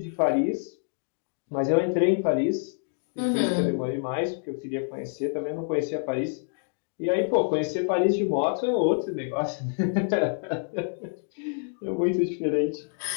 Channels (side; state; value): right; silent; digital silence